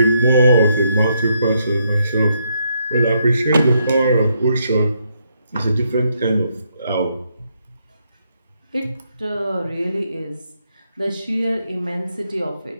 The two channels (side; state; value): both; inverted; correlation -0.77